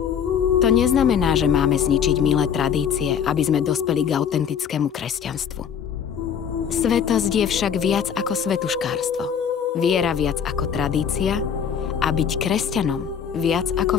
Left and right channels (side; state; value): right; quieter; 7.8 dB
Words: To neznamená, že máme zničiť milé tradície, aby sme dospeli k autentickému kresťanstvu. Svetosť je však viac ako svetuškárstvo, viera viac ako tradícia a byť kresťanom viac ako